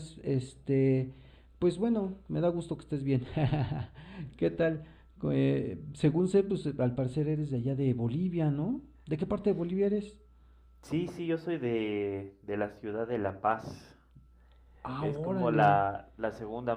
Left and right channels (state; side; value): identical; both; correlation 1.00